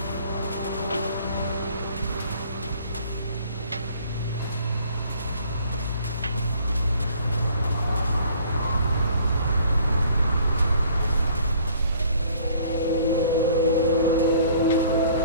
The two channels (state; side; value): inverted; both; correlation -0.56